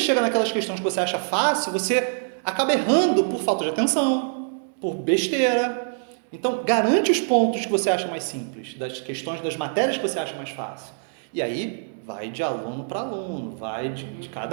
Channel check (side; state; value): left; silent; digital silence